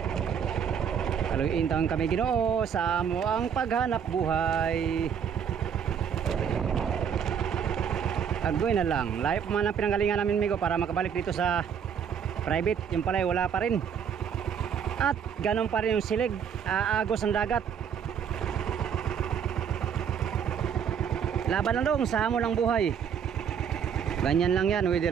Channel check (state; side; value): quieter; left; 7.8 dB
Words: Kaluintang kami Ginoo sa amo ang paghanap buhay. Agoy na lang. Layo pa man ang pinanggalingan namin migo para makabalik dito sa private. Yung pala wala pa rin. At ganun pa rin yung silig. Aagos ang dagat. Laban lang dong sa amo ng buhay. Ganyan lang yan.